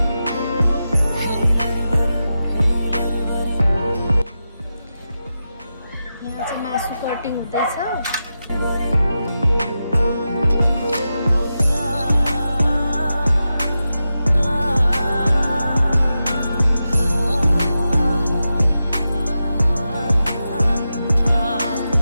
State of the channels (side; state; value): both; inverted; correlation -0.90